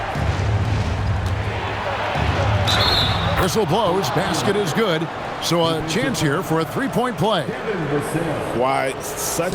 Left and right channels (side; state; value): both; identical; correlation 1.00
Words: Whistle blows, basket is good. So a chance here for a 3-point play. Why,